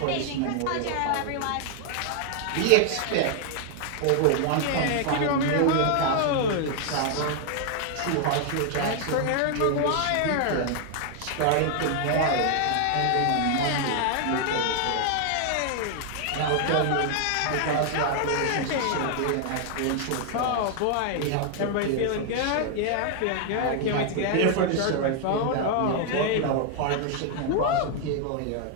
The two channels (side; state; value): both; different; correlation 0.00